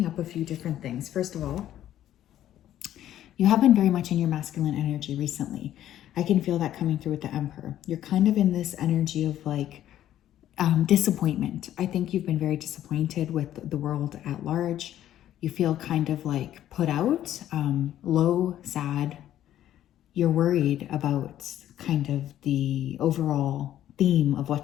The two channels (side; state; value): right; quieter; 12.1 dB